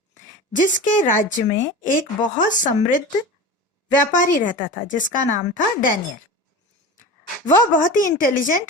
जिसके राज्य में एक बहुत समृद्ध व्यापारी रहता था जिसका नाम था डैनियल. वह बहुत ही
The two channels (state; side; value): normal; both; correlation 0.31